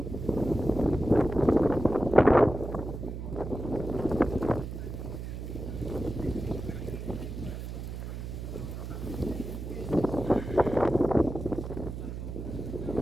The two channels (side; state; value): right; noise; hum, 7 dB below the sound